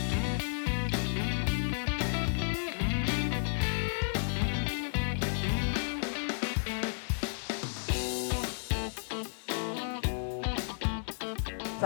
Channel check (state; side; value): silent; right; digital silence